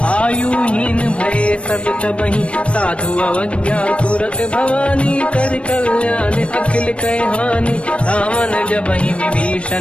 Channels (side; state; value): right; late; 0.060 ms